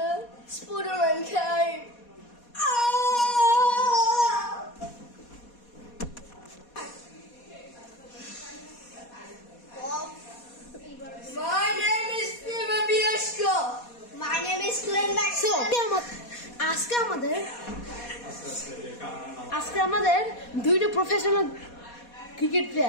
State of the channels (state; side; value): late; right; 4.2 ms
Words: Spooderman came. Oh! My name is Fever Bieshko. My name is Glenn Maxwell. আজকে আমাদের দুইটা professional cricket